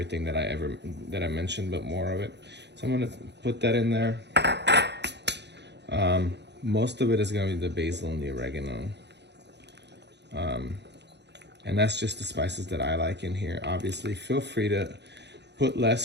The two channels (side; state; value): left; late; 0.50 ms